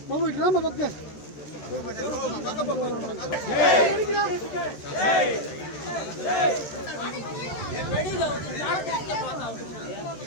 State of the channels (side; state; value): right; late; 13 ms